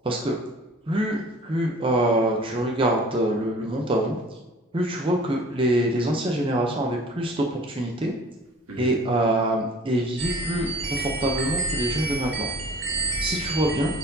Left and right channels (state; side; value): normal; both; correlation 0.48